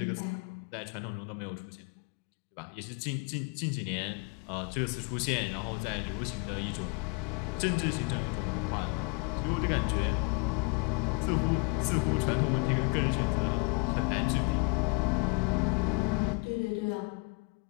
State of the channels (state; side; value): quieter; right; 31.2 dB